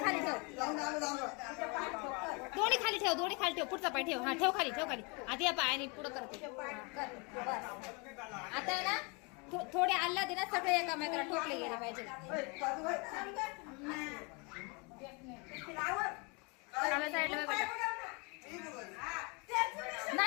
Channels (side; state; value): right; quieter; 31.2 dB